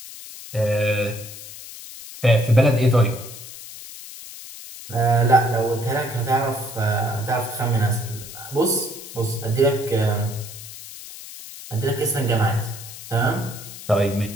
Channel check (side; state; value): left; noise; hiss, 14 dB below the sound